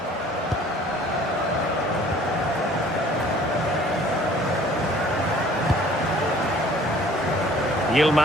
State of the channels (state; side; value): normal; both; correlation 0.53